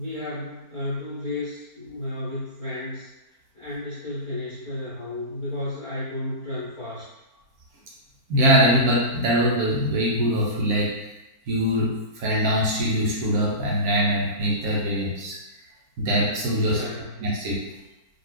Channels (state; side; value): late; left; 4.4 ms